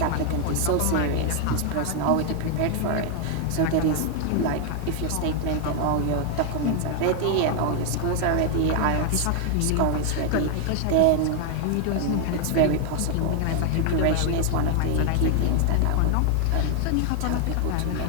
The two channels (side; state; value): both; different; correlation 0.00